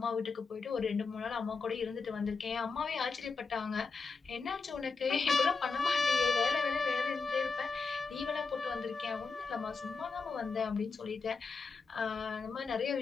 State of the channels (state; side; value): quieter; right; 4.5 dB